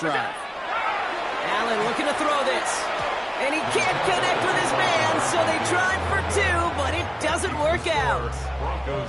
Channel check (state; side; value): identical; both; correlation 1.00